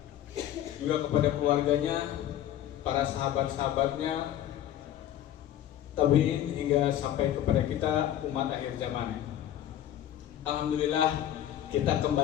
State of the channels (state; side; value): quieter; right; 11.7 dB